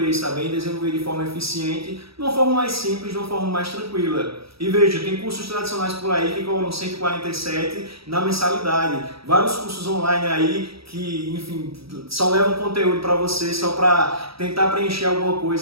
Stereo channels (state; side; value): late; left; 0.76 ms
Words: tá bem? Desenvolver de forma eficiente, de uma forma mais simples, de uma forma mais tranquila. E veja, tem cursos tradicionais por aí que cobram 147 na mensalidade. Vários cursos online aí que, enfim, só levam conteúdo para você só para tentar preencher alguma